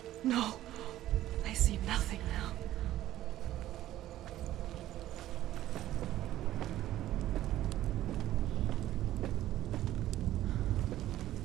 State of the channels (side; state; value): left; quieter; 13.9 dB